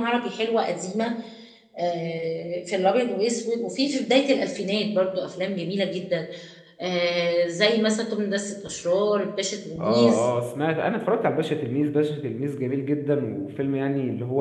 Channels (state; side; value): identical; both; correlation 1.00